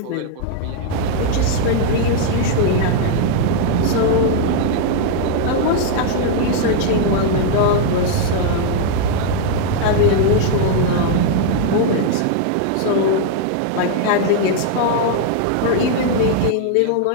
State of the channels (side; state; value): both; different; correlation -0.01